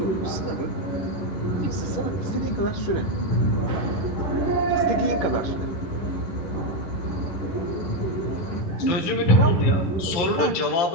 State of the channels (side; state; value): right; late; 11 ms